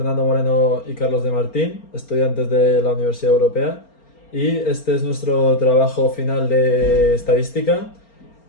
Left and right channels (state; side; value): late; right; 4.3 ms